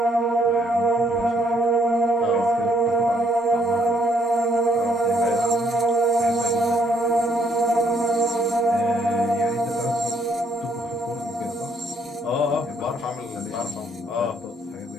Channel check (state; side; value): normal; both; correlation 0.69